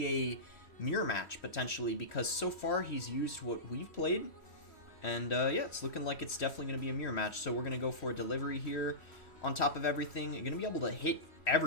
a mirror match, potentially, because so far he's used what we've played. And yeah, it's looking like it's definitely going to be a mirror match. So we're going to go for a delivery here on top of everything. You're going to be able to hit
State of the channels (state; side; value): late; right; 3.1 ms